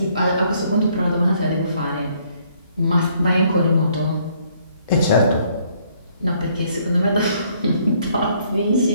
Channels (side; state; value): both; inverted; correlation -0.66